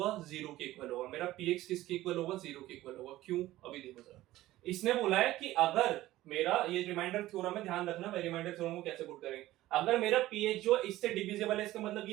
0 के इक्वल होगा। मेरा px किसके इक्वल होगा, 0 के इक्वल होगा। क्यों, अभी देखो जरा। इसने बोला है कि अगर मेरा, ये रिमाइंडर थ्योरम है, ध्यान रखना रिमाइंडर थ्योरम को कैसे पुट करेंगे। अगर मेरा ph जो इससे डिविजिबल है, इसका मतलब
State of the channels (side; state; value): left; quieter; 15.9 dB